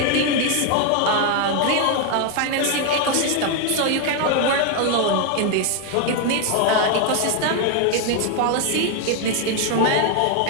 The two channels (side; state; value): both; different; correlation 0.01